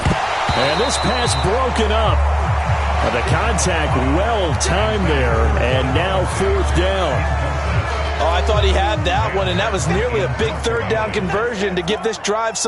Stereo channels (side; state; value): both; identical; correlation 1.00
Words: this pass broken up. The contact well timed there. And now fourth down. Oh, I thought he had that one, and that was nearly a big third down conversion to give this drive